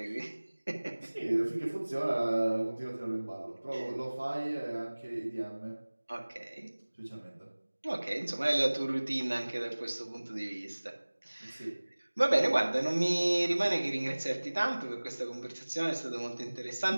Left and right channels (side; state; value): both; inverted; correlation -1.00